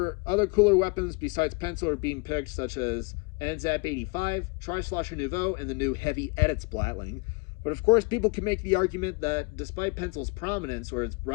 other cooler weapons besides pencil are being picked, such as NZAP 85, Tri-Slosher Nouveau, and the new Heavy Edit Splatling. But of course, people can make the argument that despite pencil's prominence, or its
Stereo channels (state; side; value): quieter; right; 30.3 dB